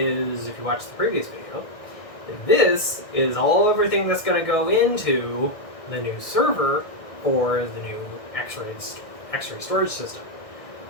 if you watched the previous video, this is everything that's going to go into the new server for the new X-ray storage system.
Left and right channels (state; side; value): late; right; 1.6 ms